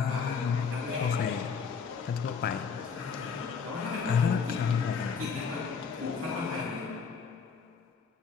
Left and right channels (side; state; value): right; quieter; 5.8 dB